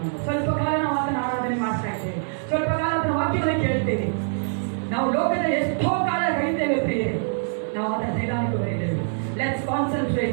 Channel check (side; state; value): left; silent; digital silence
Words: ಸ್ವಲ್ಪ ಕಾಲ ನಾವು ಆತನ ಆರಾಧನೆ ಮಾಡ್ತಾ ಇದ್ದೇವೆ, ಸ್ವಲ್ಪ ಕಾಲ ಆತನ ವಾಕ್ಯವನ್ನು ಕೇಳ್ತೇವೆ. ನಾವು ಲೋಕದ ಎಷ್ಟೋ ಕಾಲ ಕಳೀತೇವೆ ಪ್ರಿಯರೇ, ನಾವು ಆತನ ಸನ್ನಿಧಾನಕ್ಕೆ ಬರೀತೇವೆ. Let's